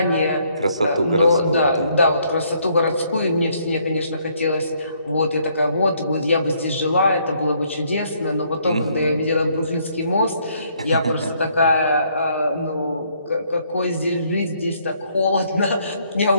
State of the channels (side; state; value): both; inverted; correlation -0.68